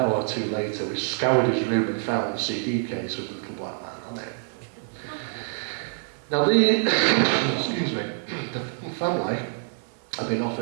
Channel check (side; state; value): left; silent; 59 dB below the other